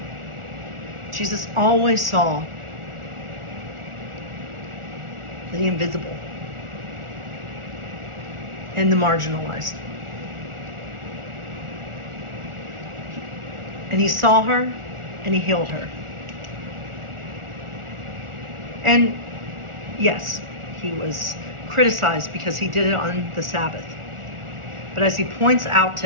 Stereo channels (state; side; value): late; left; 1.4 ms